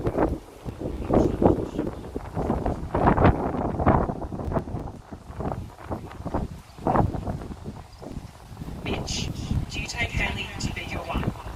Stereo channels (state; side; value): identical; both; correlation 1.00